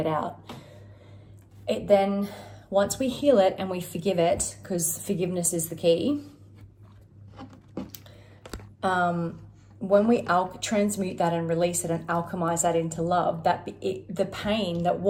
out. It then, once we heal it and we forgive it, because forgiveness is the key, when we transmute that and release it and alchemize that into love, the pain that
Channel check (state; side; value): identical; both; correlation 1.00